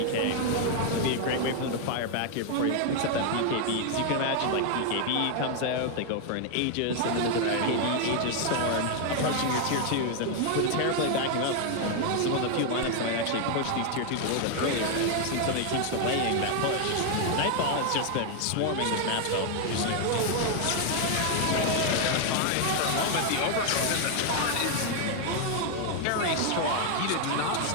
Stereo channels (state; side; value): different; both; correlation 0.00